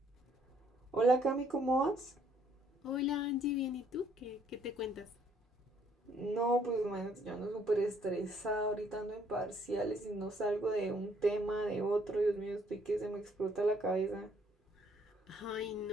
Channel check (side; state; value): both; normal; correlation 0.65